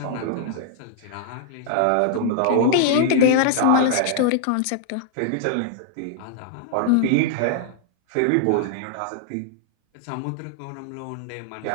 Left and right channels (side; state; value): both; different; correlation -0.01